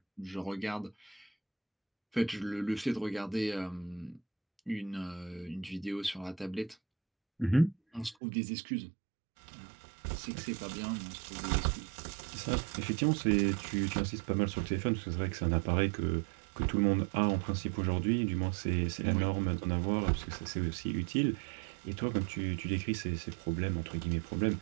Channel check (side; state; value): left; drops out; at 8.2 s